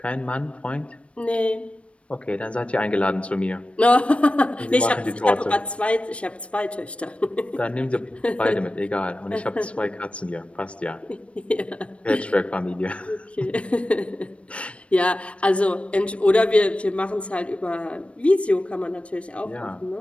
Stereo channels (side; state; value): right; late; 0.061 ms